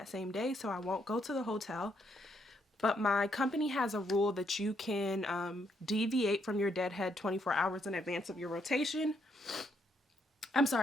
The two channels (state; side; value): normal; both; correlation 0.74